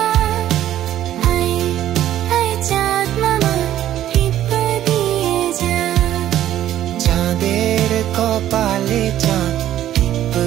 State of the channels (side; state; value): left; quieter; 12.3 dB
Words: আয় আয় চাঁদ মামা টিপ দিয়ে যা। চাঁদের কপালে চাঁদ টিপ